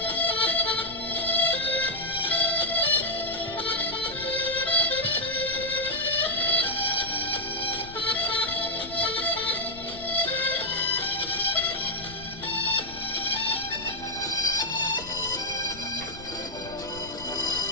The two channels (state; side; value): noise; left; rumble, 16 dB below the sound